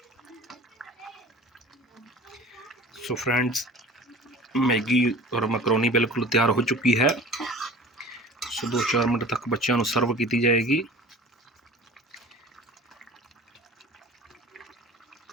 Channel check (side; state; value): both; normal; correlation 0.42